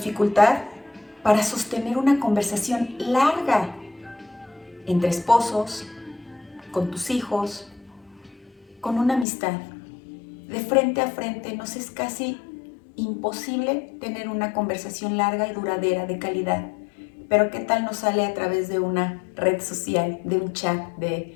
para sostener una conversación larga entre esposos, con tus hijos, con una amistad. De frente a frente nos es casi imposible tener una conversación larga y duradera de calidad. Pero ¿qué tal nos sale a través de una red social, de un chat,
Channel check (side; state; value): right; drops out; at 9.2 s